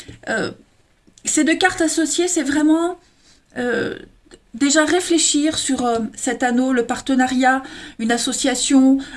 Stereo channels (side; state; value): both; identical; correlation 1.00